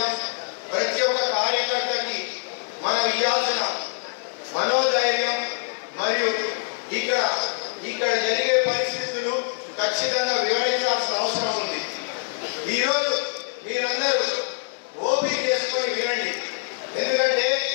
ప్రతి ఒక్క కార్యకర్తకి మనం ఇవ్వాల్సిన మనోధైర్యం మరియు ఇక్కడ జరిగే పరిస్థితులు ఖచ్చితంగా వివరించాల్సిన అవసరం ఉంది. ఈరోజు మీరందరూ ఓపిక చేసుకొని వినండి. ఎందుకంటే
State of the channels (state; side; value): silent; right; digital silence